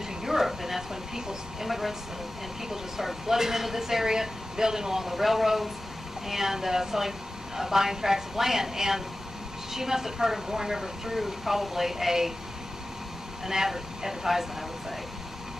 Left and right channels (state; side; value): normal; both; correlation 0.95